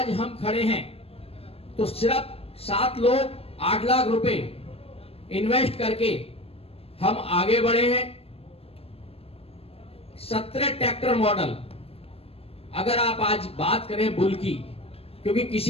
हम खड़े हैं तो सिर्फ 7 लोग 8 लाख रुपए इन्वेस्ट करके हम आगे बढ़े हैं। 17 ट्रैक्टर मॉडल, अगर आप आज बात करें बुल की, क्योंकि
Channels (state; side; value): late; right; 0.28 ms